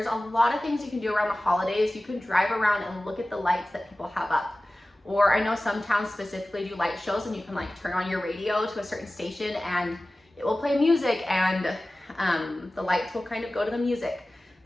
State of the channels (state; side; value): normal; both; correlation 0.97